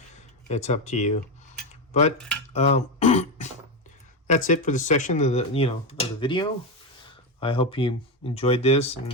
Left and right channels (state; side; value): normal; both; correlation 0.12